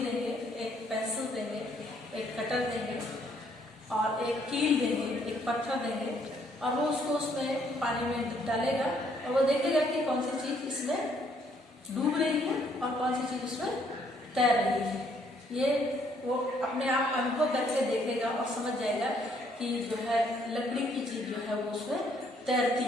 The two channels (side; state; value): both; normal; correlation 0.67